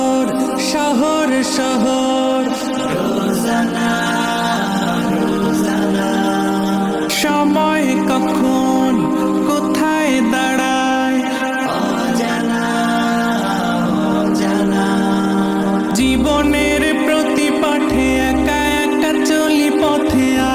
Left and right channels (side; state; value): both; identical; correlation 1.00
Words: শহর শহর রোজানা রোজানা সময় কখন কোথায় দাঁড়ায় অজানা অজানা। জীবনের প্রতি পাঠে একা একা চলি পথে